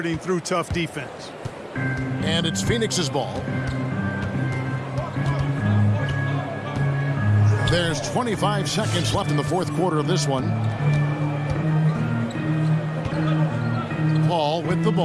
through tough defense. And it's Phoenix's ball. There's 25 seconds left in the 4th quarter of this one. Paul with the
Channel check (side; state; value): both; identical; correlation 1.00